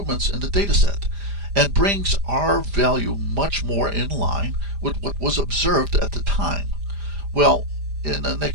in the dataset and brings our value much more in line with what was observed at the time." Well, in the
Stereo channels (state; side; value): late; left; 5.0 ms